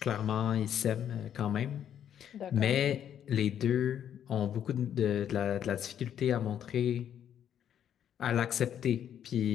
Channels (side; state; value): right; quieter; 9.7 dB